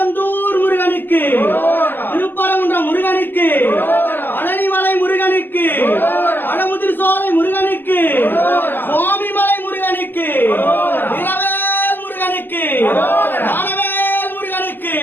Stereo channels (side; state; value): right; late; 0.092 ms